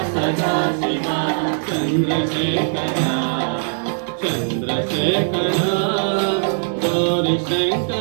सदाशिव चंद्रशेखर चंद्रशेखर गौरी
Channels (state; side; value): silent; left; digital silence